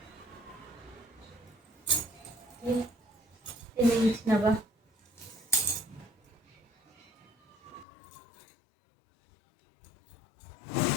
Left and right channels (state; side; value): drops out; right; at 7.9 s